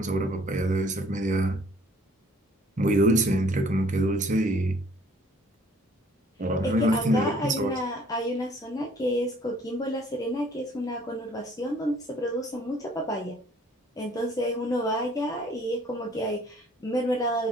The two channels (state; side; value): normal; both; correlation 0.58